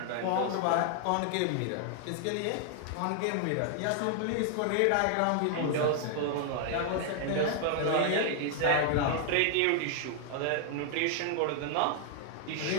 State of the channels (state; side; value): different; both; correlation 0.00